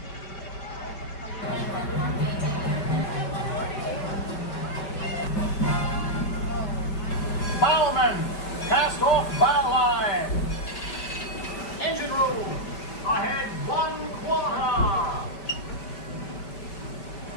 gentlemen, cast off banner line. Engine room, ahead 1/4.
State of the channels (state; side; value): late; right; 5.1 ms